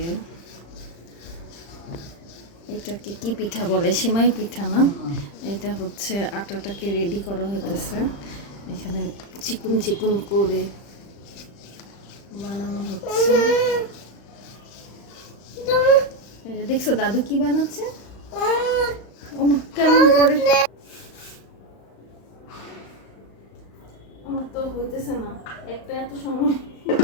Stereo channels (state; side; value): late; right; 35 ms